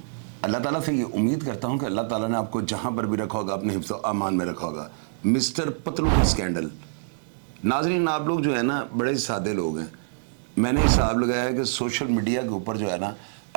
अल्लाह ताला से ये उम्मीद करता हूँ कि अल्लाह ताला ने आपको जहाँ पर भी रखा होगा अपने हिफ्ज़ व अमान में रखा होगा। मिस्टर पतलू का स्कैंडल। नाज़रीन, आप लोग जो है ना बड़े सादे लोग हैं। मैंने हिसाब लगाया है कि सोशल मीडिया के ऊपर जो है ना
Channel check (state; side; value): silent; left; digital silence